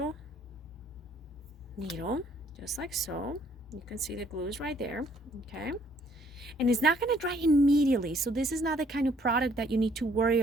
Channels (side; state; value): both; normal; correlation 0.63